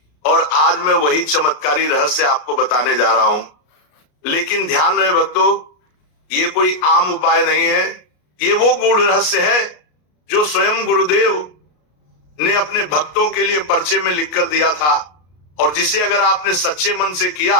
और आज मैं वही चमत्कारी रहस्य आपको बताने जा रहा हूं। लेकिन ध्यान रहे भक्तों, ये कोई आम उपाय नहीं है, ये वो गूढ़ रहस्य है जो स्वयं गुरुदेव ने अपने भक्तों के लिए पर्चे में लिखकर दिया था, और जिसे अगर आपने सच्चे मन से किया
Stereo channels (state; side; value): late; right; 33 ms